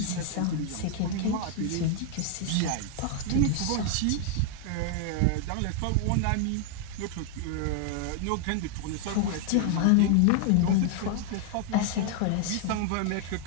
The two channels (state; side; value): different; both; correlation 0.00